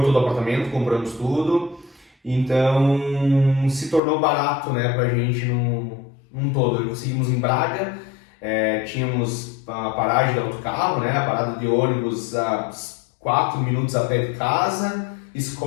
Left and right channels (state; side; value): drops out; right; at 4.0 s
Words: todo o apartamento, compramos tudo, então se tornou barato, né, pra gente num todo. Conseguimos em Braga, tínhamos a paragem do autocarro, né? A parada de ônibus a 4 minutos a pé de casa.